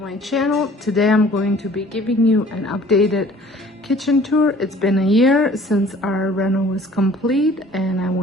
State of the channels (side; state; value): both; normal; correlation 0.51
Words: channel. Today I'm going to be giving you an updated kitchen tour. It's been a year since our reno was complete, and I